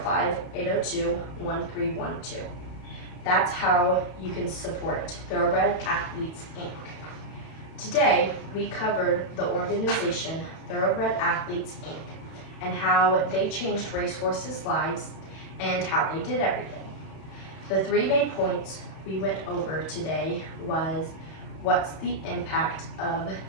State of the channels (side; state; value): right; late; 31 ms